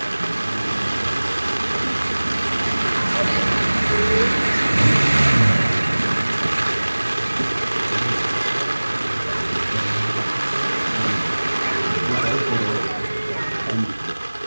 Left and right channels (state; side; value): inverted; both; correlation -1.00